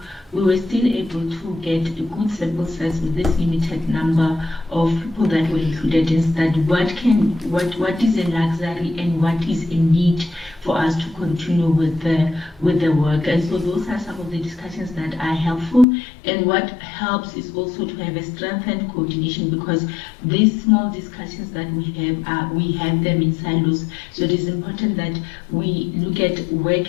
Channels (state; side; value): drops out; right; at 15.9 s